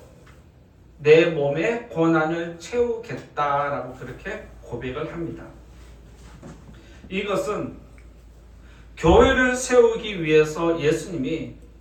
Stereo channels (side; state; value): both; identical; correlation 1.00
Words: 내 몸의 고난을 채우겠다라고 그렇게 고백을 합니다. 이것은 교회를 세우기 위해서 예수님이